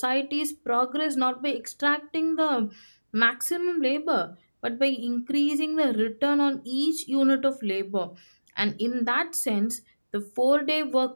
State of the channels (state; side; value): inverted; both; correlation -1.00